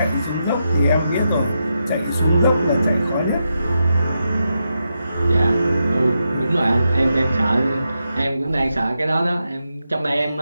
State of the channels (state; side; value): inverted; both; correlation -0.86